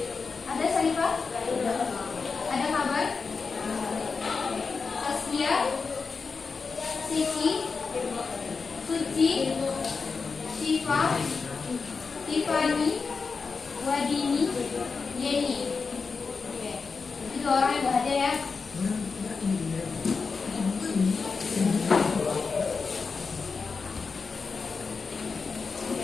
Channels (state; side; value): quieter; right; 4.8 dB